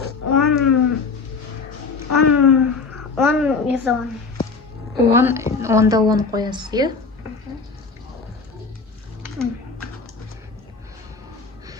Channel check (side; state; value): right; quieter; 4.6 dB